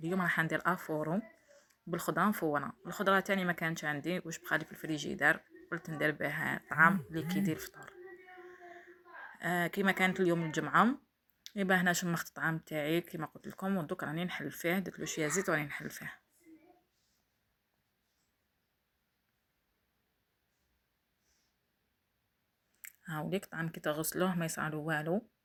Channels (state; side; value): identical; both; correlation 1.00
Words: راح ندير افورو بالخضره مفوره. الخضره تاني ما كانتش عندي واش بقالي في الفريجيدار، قلت ندير بها طعام اللي كيدير الفطور. كيما كانت اليوم الجمعه، يبقى هنا شمخت الطعام تاعي كيما قلت لكم، ودوك راني نحل فيه. درت له شويه زيت وراني نحل فيه. هاوليك الطعام كي تغسلوه ما يصعلو والو،